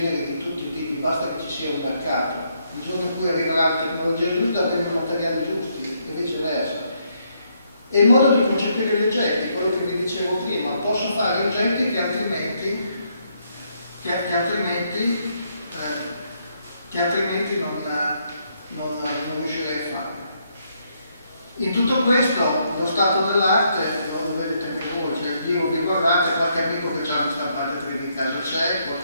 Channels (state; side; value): inverted; both; correlation -0.74